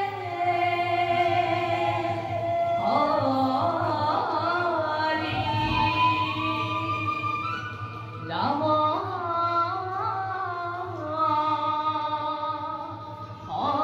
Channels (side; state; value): both; identical; correlation 1.00